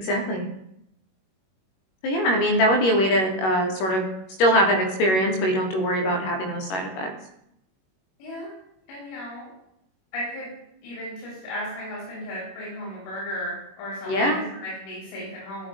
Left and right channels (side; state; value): right; late; 21 ms